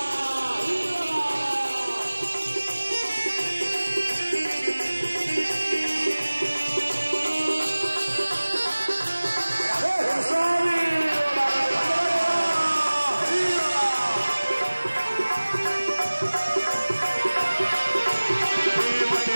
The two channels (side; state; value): both; inverted; correlation -1.00